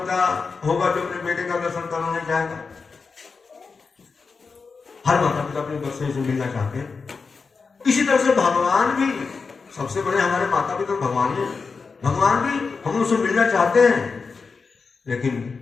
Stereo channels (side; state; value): right; quieter; 4.8 dB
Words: होगा जो अपने बेटे का दर्शन करना नहीं चाहेगा? हर माता पिता अपने बच्चे से मिलना चाहते हैं। इसी तरह से भगवान भी, सबसे बड़े हमारे माता पिता भगवान ही, भगवान भी हम उनसे मिलना चाहते हैं, लेकिन